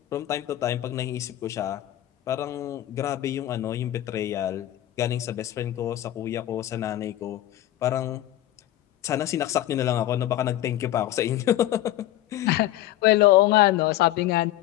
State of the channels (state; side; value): quieter; right; 14.1 dB